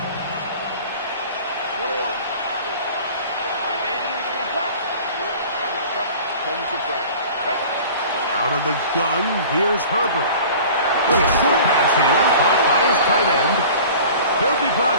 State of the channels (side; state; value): both; inverted; correlation -0.43